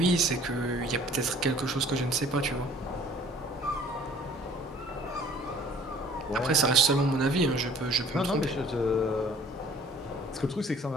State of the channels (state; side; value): normal; both; correlation 0.53